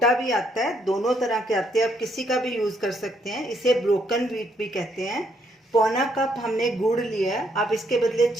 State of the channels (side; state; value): both; normal; correlation 0.72